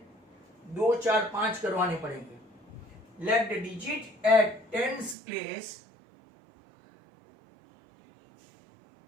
2, 4, 5 करवाने पड़ेंगे. Let the digit at tens place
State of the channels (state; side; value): drops out; left; at 5.2 s